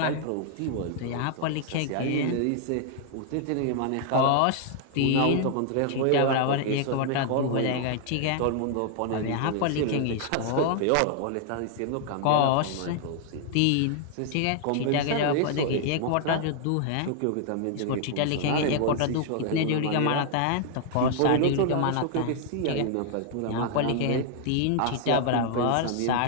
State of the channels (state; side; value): different; both; correlation 0.00